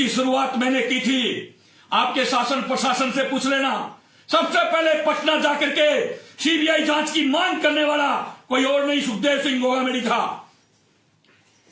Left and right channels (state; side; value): identical; both; correlation 1.00